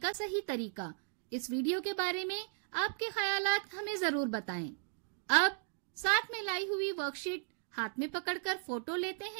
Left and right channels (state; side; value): silent; left; digital silence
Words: सही तरीका, इस वीडियो के बारे में आपके ख्यालात हमें जरूर बताएं। अब साथ में लाई हुई वर्कशीट हाथ में पकड़कर फोटो लेते